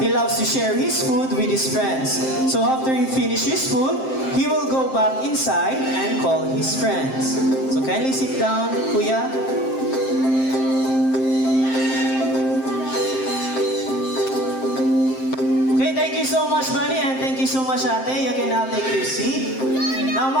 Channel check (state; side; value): late; right; 7.6 ms